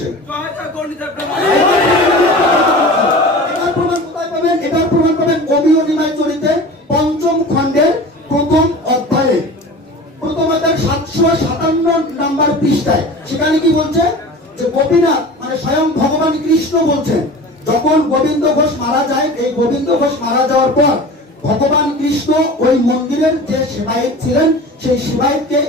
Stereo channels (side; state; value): both; normal; correlation 0.37